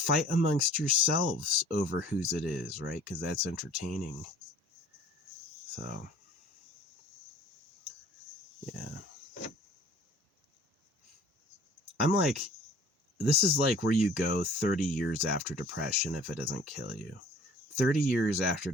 amongst yourselves over whose it is, right? Because that's entertaining. So, yeah. I'm like, this is like where you go 30 years after depression if it doesn't kill you. 30 years after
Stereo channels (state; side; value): normal; both; correlation 0.50